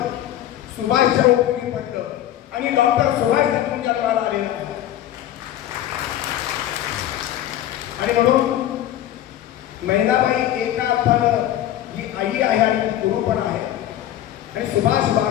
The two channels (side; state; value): right; quieter; 12.5 dB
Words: सुभाषच्या उपयोगी पडलं आणि डॉक्टर सुभाष तुमच्या जन्माला आलेलं आहे. आणि म्हणून महिलाबाई एका अर्थानं ही आई आहे आणि गुरु पण आहे. आणि सुभाष